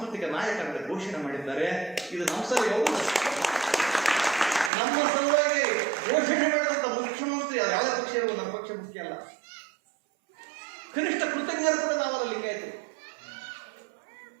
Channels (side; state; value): left; drops out; at 4.7 s